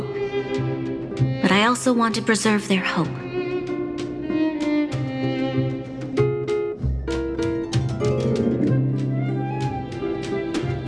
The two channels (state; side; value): identical; both; correlation 1.00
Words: But I also want to preserve their hope.